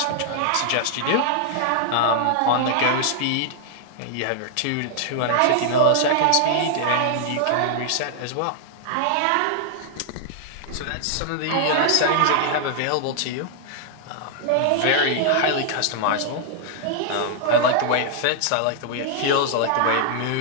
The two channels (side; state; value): both; different; correlation 0.00